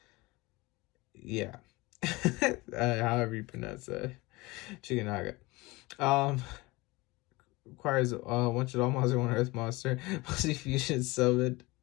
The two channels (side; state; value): right; quieter; 22.6 dB